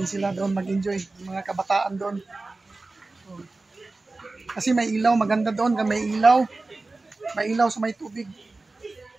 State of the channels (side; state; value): left; quieter; 3.4 dB